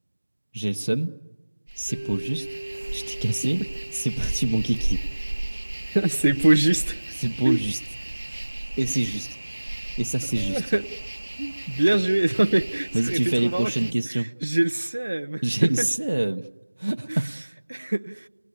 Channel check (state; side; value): inverted; both; correlation -1.00